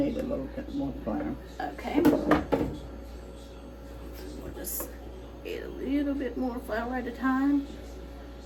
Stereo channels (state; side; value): identical; both; correlation 1.00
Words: a little bit more flour. Okay. We'll just add a little bit more flour at a time.